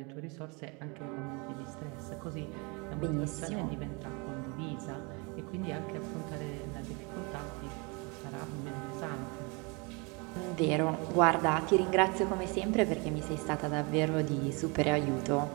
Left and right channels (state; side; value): quieter; left; 30.2 dB